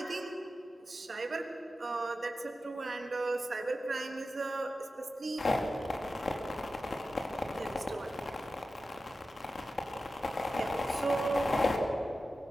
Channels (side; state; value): both; normal; correlation 0.93